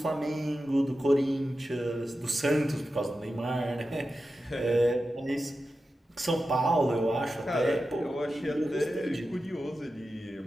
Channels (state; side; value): normal; both; correlation 0.92